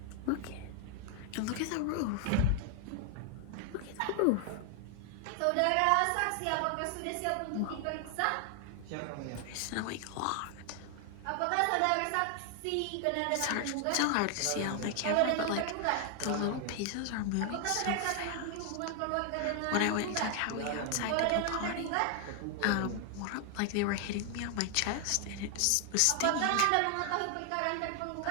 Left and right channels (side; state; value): both; different; correlation 0.00